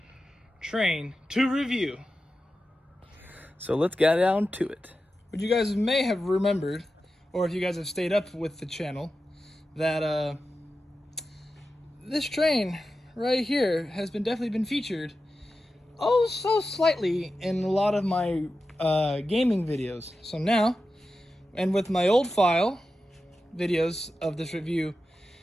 train to review. So let's get down to it. What you guys may have remembered, or if you guys have stayed up with the channel, that this train right here has definitely been featured so slightly in a lot of my gaming videos. So now, and with my old file videos of this review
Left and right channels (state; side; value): normal; both; correlation 0.92